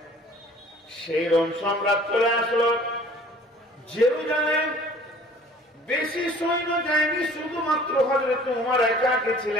সেই রোম সম্রাট চলে আসলো জেরুজালেম। বেশি সৈন্য যায়নি, শুধুমাত্র হযরত ওমর একা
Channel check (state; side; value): normal; both; correlation 0.51